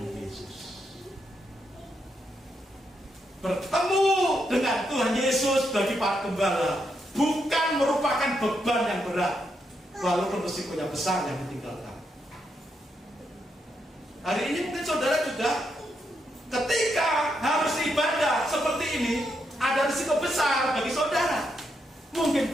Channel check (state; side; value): normal; both; correlation 0.81